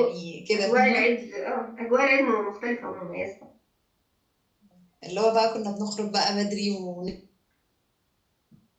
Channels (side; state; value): both; identical; correlation 1.00